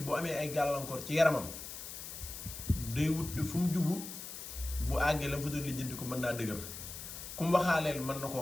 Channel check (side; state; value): left; noise; hiss, 9 dB below the sound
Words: boo amee ay gàllankoor ci yaramam day wut fu mu jubu bu àggee la mu fa doon lijjanti ko mën naa dëgër ku mu waxaaleel mën na